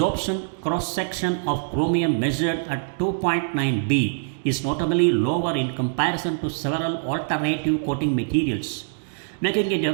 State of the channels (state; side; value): silent; left; digital silence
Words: cross-section of chromium measured at 2.9 B is notably lower in comparison to several alternative coating materials, making it a